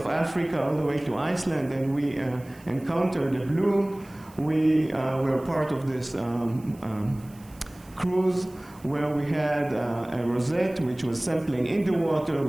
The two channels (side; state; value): right; noise; hiss, 26 dB below the sound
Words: Africa all the way to Iceland, and we encountered a bloom. We were part of this cruise where we had a rosette which was sampling in the water.